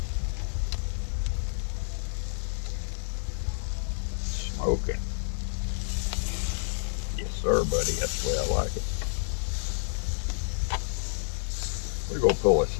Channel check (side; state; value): right; silent; digital silence